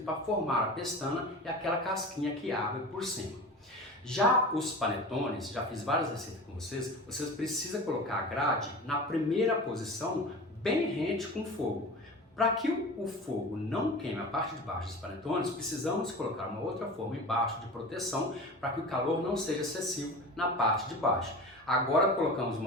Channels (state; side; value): normal; both; correlation 0.33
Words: para formar a pestana e aquela casquinha que abre por cima. Já os panetones, já fiz várias receitas com vocês precisam colocar a grade na primeira posição, bem rente com o fogo. Para que o fogo não queime a parte de baixo dos panetones, precisamos colocar uma outra forma embaixo de proteção para que o calor não seja excessivo na parte de baixo. Agora colocamos